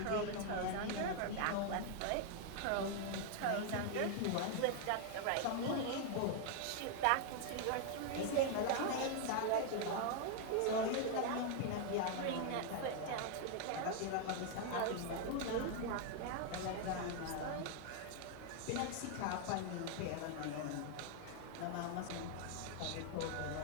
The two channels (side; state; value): both; different; correlation 0.00